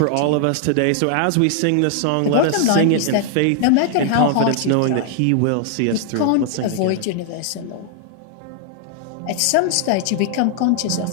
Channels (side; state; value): both; different; correlation 0.00